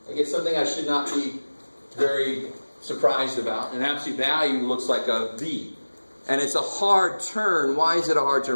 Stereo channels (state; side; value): inverted; both; correlation -1.00